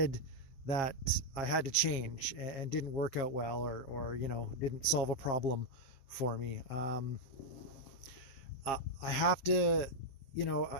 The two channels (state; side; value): late; right; 7.6 ms